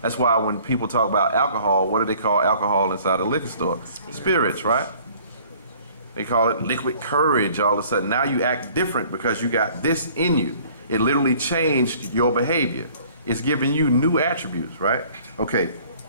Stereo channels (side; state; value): both; inverted; correlation -0.54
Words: That's why when people talk about alcohol, what do they call alcohol inside a liquor store? Spirits, right? They call it liquid courage all of a sudden. Now you act different because you got this in you. It literally changed your behavior. It's giving you new attributes, right? Okay.